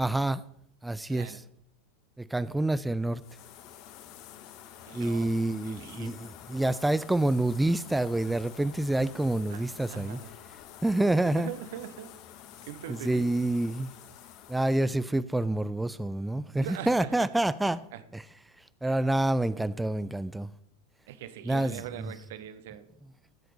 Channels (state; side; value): normal; both; correlation 0.95